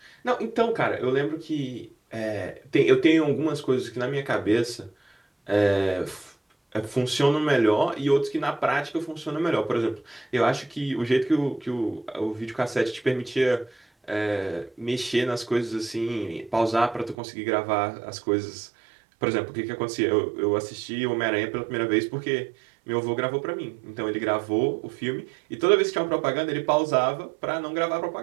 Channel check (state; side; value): drops out; left; at 17.2 s